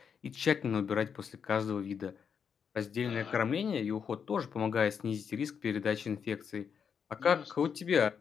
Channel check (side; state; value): right; quieter; 6.9 dB